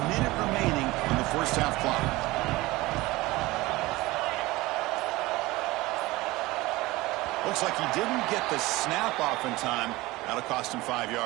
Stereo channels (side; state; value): left; quieter; 20.1 dB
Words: minute remaining on the first half clock. Looks like he didn't get the snap off in time. That'll cost him 5